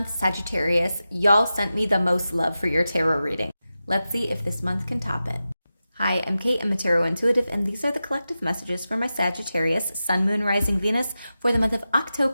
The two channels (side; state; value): both; inverted; correlation -0.92